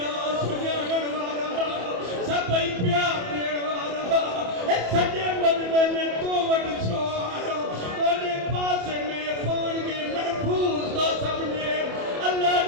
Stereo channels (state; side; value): late; left; 28 ms